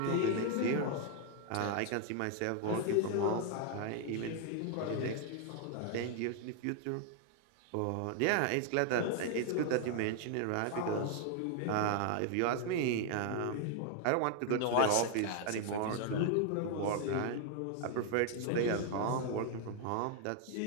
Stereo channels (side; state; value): both; different; correlation 0.00